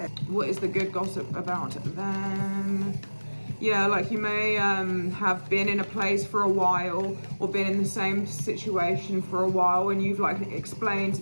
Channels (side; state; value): both; inverted; correlation -1.00